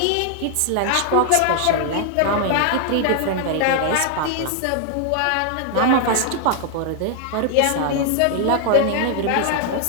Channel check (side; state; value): both; different; correlation 0.00